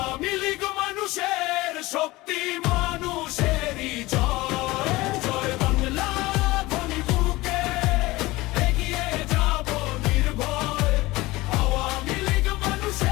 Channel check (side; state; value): right; quieter; 20.1 dB